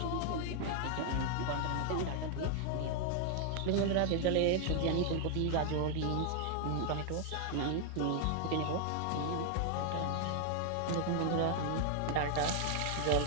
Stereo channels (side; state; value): both; different; correlation 0.00